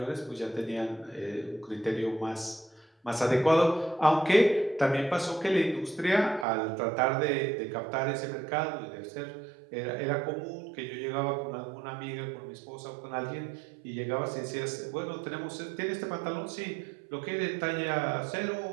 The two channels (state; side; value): drops out; left; at 6.5 s